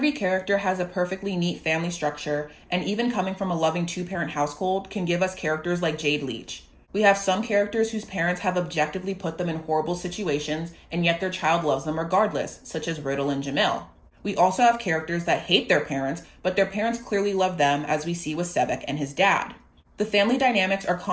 character has a perfectly neat family structure, and even coming from a loving two-parent household can give us characters like Jade Leach. We have some characters whose parents have objectively put them in horrible situations, and yet their child loves them regardless, such as Riddle and Jamil. We also have characters that hate their parents, but their parents clearly love them, as we see with Sebek and his dad. The family dynamics are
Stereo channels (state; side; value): identical; both; correlation 1.00